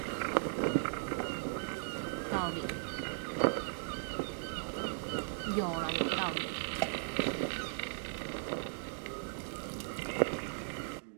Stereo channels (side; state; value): left; silent; digital silence